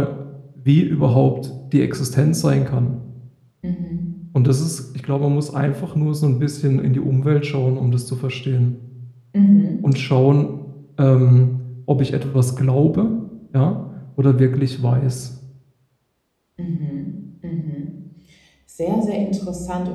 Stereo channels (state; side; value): identical; both; correlation 1.00